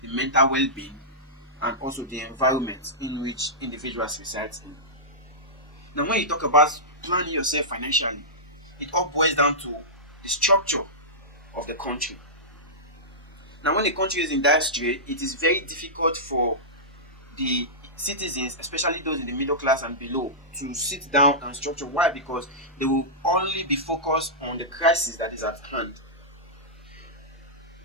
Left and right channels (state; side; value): normal; both; correlation -0.15